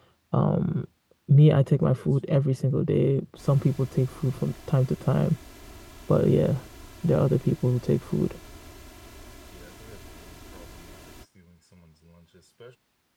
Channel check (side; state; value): both; identical; correlation 1.00